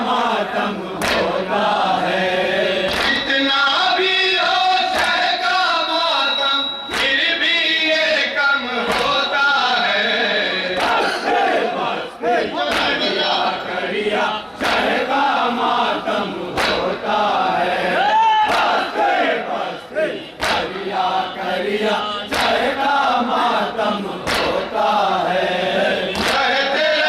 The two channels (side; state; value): both; identical; correlation 1.00